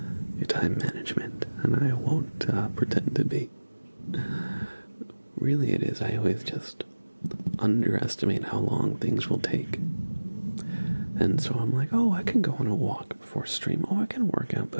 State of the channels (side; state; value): both; inverted; correlation -1.00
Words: time management, and I won't pretend to be. Really, it is. I always just underestimate how long things will take. And so I'm like, oh, I can go on a walk before stream. Oh, I can work out